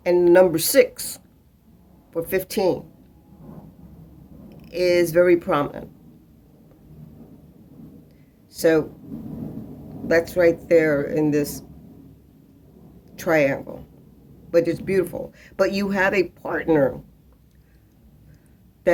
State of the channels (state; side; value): identical; both; correlation 1.00